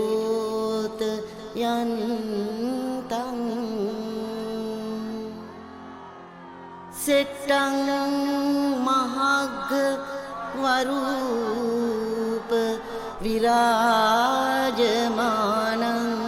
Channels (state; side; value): identical; both; correlation 1.00